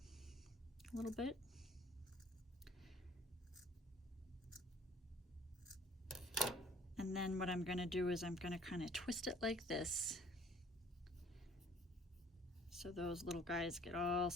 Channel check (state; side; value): normal; both; correlation 0.54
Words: a little bit. And then what I'm going to do is I'm going to kind of twist it like this, so those little guys get all